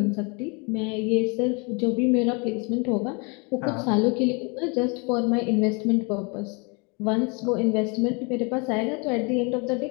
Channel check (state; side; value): quieter; right; 31.9 dB